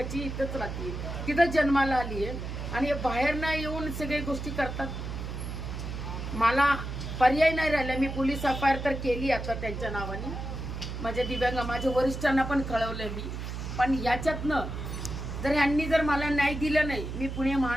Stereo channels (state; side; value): noise; right; hum, 6 dB below the sound